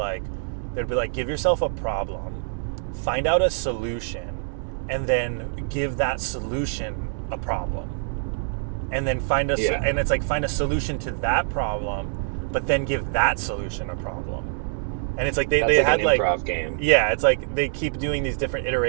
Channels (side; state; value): left; silent; digital silence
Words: give yourself a problem, find out a solution, and then give that solution a problem, and then find and it's like find a solution to that problem, but then give that solution a problem. And it's like they had an improv game. Yeah, it's like they keep doing these different